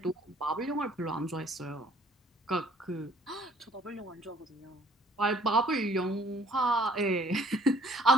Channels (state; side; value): normal; both; correlation 0.59